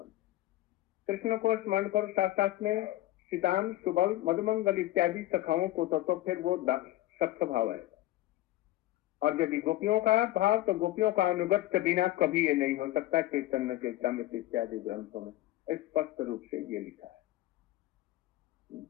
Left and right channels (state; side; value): quieter; right; 15.7 dB